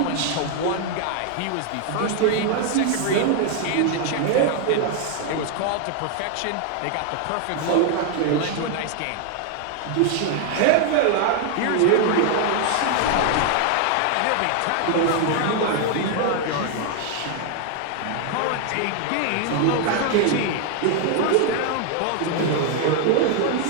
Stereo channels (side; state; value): both; different; correlation 0.00